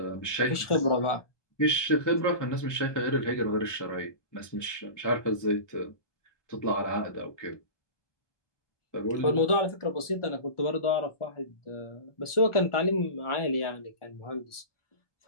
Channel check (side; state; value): right; late; 1.2 ms